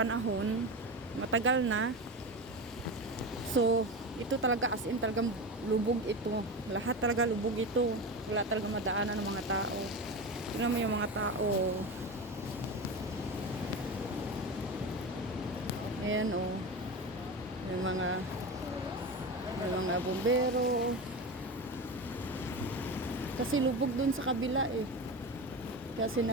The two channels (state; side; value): normal; both; correlation 0.24